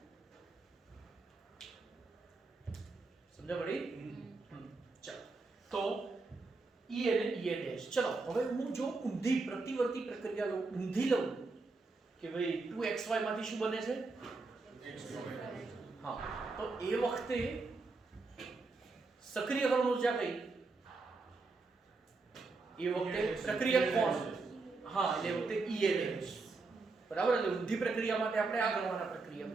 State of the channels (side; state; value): left; quieter; 3.8 dB